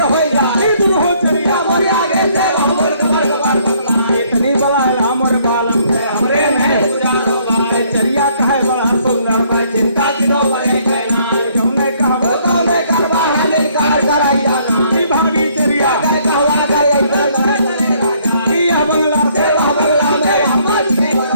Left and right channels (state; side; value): inverted; both; correlation -0.65